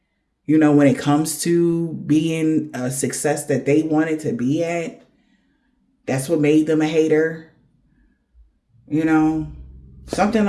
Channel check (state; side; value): identical; both; correlation 1.00